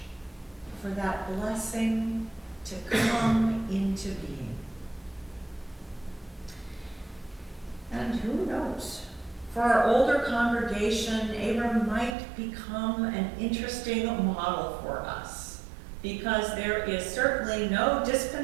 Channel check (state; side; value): drops out; left; at 12.2 s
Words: for that blessing to come into being? And who knows? For our older congregation, Abram might become an interesting model for us, because there is certainly no